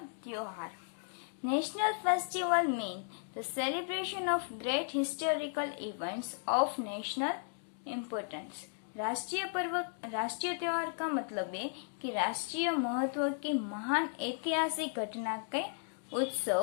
त्योहार. National festival mean the celebration of great historical events of national importance. राष्ट्रीय त्योहार का मतलब है कि राष्ट्रीय महत्व की महान ऐतिहासिक घटना के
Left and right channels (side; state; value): right; silent; 54 dB below the other